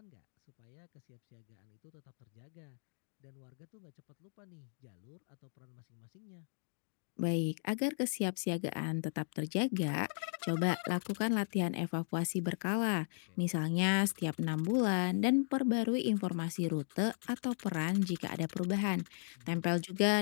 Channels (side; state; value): right; silent; digital silence